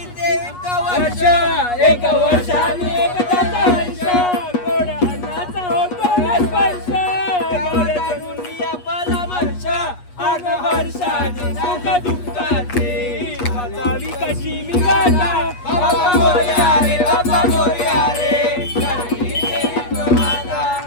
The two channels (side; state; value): right; late; 8.3 ms